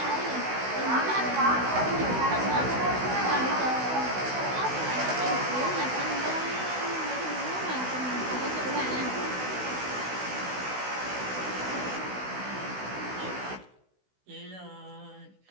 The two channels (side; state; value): left; late; 16 ms